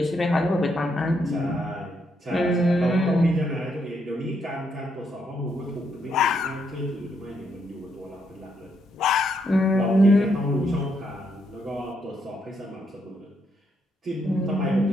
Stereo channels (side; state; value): both; normal; correlation 0.76